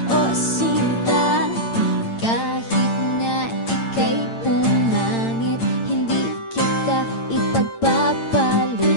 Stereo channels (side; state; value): right; late; 8.8 ms